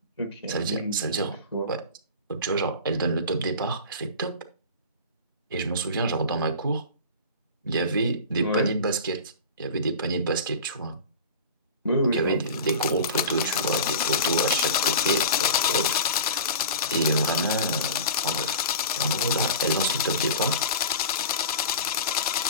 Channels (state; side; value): inverted; both; correlation -0.33